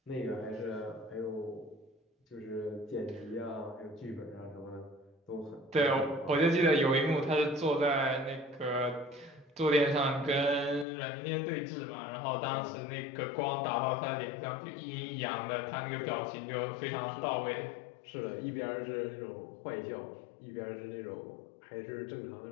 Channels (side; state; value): right; drops out; at 10.9 s